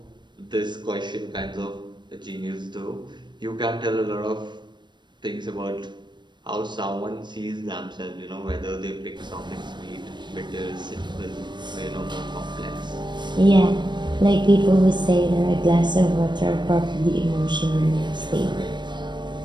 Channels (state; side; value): late; left; 0.22 ms